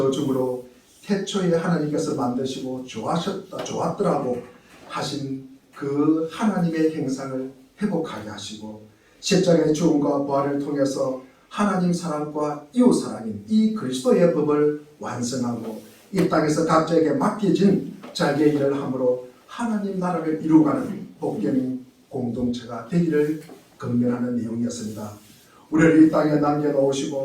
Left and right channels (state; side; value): identical; both; correlation 1.00